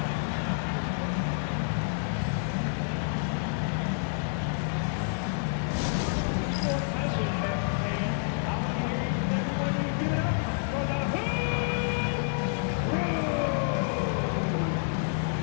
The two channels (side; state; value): right; silent; digital silence